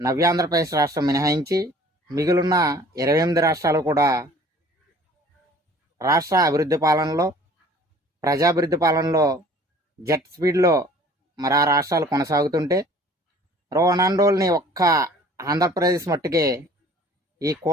ఆంధ్రప్రదేశ్ రాష్ట్రం మినహాయించి మిగిలిన 28 రాష్ట్రాలు కూడా రాష్ట్ర అభివృద్ధి పాలనలో ప్రజాభివృద్ధి పాలనలో జెట్ స్పీడ్లో మరి ఆ రాష్ట్రాలు కొనసాగుతుంటే రోనాండోల్ని ఒక్క ఆంధ్రప్రదేశ్ మట్టుకే ఈ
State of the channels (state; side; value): normal; both; correlation 0.50